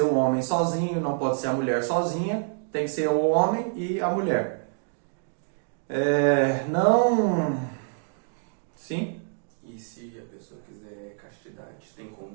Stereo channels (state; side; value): silent; left; digital silence